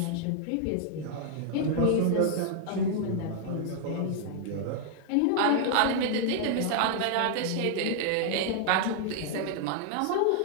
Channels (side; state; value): both; different; correlation -0.01